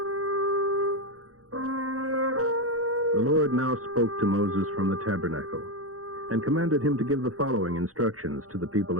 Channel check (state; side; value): late; left; 0.65 ms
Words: The Lord now spoke to Moses from the tabernacle, and commanded him to give the following instructions to the people